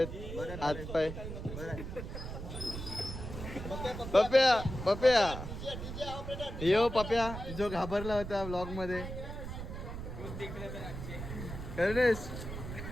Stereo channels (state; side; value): noise; right; rumble, 7 dB below the sound